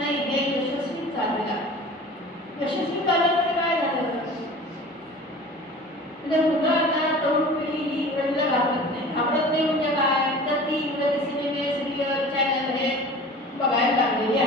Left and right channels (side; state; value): both; normal; correlation 0.40